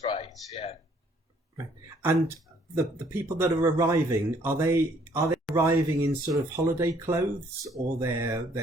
right. Yeah. Right. And the people that are arriving, are they arriving in sort of holiday clothes, or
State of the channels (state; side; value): normal; both; correlation 0.63